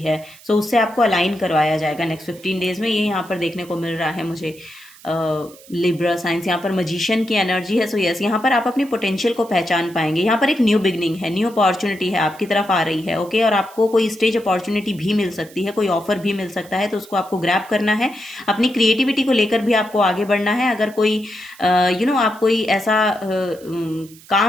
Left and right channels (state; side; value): noise; right; hiss, 23 dB below the sound